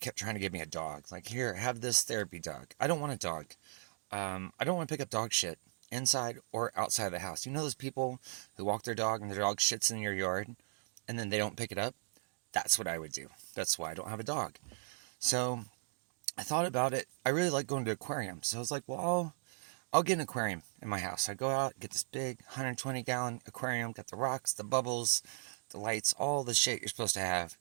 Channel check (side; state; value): left; silent; digital silence